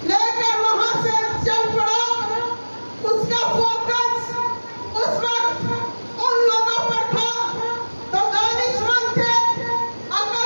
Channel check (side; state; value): both; inverted; correlation -1.00